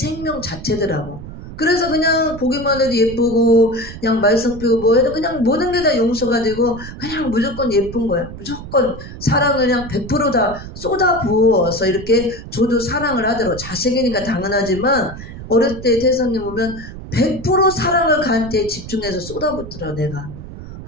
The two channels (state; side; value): noise; right; rumble, 12 dB below the sound